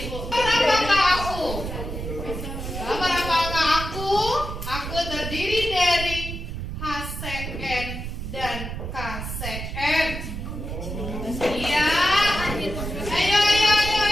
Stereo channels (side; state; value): right; noise; rumble, 6 dB below the sound